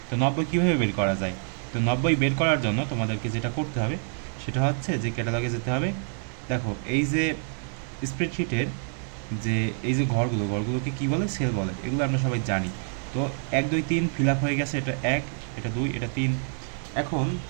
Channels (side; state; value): left; silent; 60 dB below the other